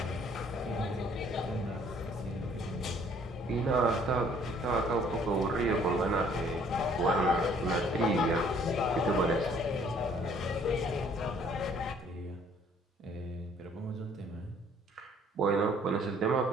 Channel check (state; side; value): normal; both; correlation 0.60